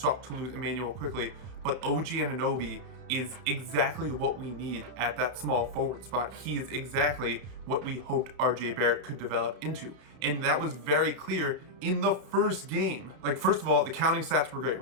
to lose Emmanuel quickly, but OG Anunoby is exactly what we need at that small forward spot. He is exactly what we hoped RJ Barrett could develop into. And that was very clear in the first game. First of all, the counting stats were great,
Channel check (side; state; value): left; late; 32 ms